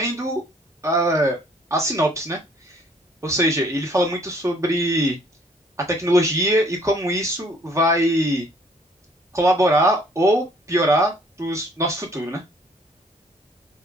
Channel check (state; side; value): normal; both; correlation 0.60